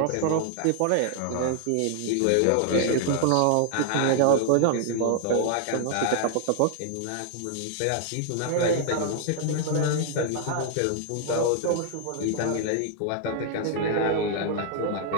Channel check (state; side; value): different; both; correlation 0.00